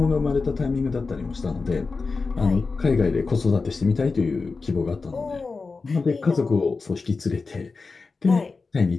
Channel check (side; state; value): right; quieter; 4.2 dB